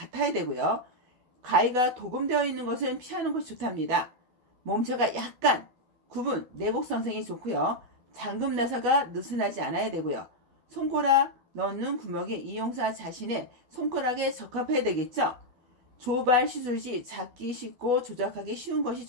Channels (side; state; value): left; late; 12 ms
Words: 되고요. 가위가 도금되어 있는 것은 피하는 것이 좋답니다. 몸체가 약간 구분, 내곡선생이 좋고요. 잠금 나사가 느슨하지 않아야 되고요. 손가락 넣는 구멍이 이용사 자신의 손가락에 적합해야 되겠죠. 조발 시술 시 잡기 쉽고 조작하기 쉬운 것이